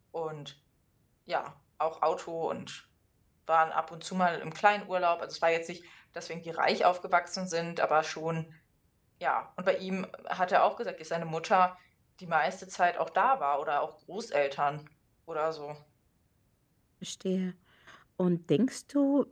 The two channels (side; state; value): both; identical; correlation 1.00